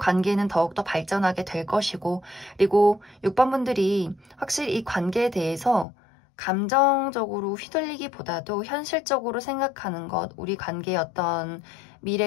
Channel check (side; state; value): right; drops out; at 5.9 s